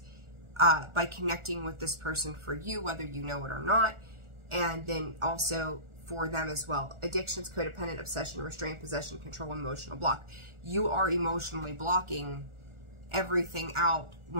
by connecting with this person for you, whether you know it or not, and then also for them as well. Addictions, codependent, obsession, restraint, possession, control, emotional block. You are emotionally blocking everything out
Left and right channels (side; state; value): left; late; 1.4 ms